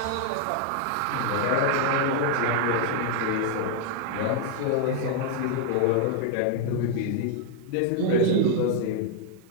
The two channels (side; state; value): both; different; correlation 0.00